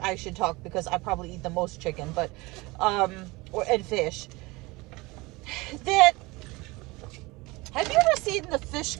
I should talk because I probably eat the most chicken, but, and fish. Have you ever seen the fish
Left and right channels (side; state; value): left; quieter; 23.2 dB